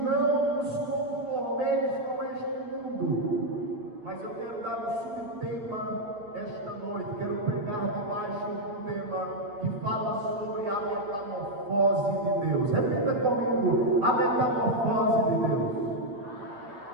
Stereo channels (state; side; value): late; left; 8.7 ms